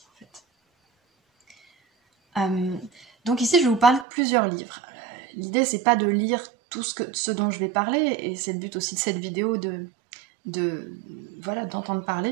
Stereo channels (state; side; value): drops out; left; at 4.0 s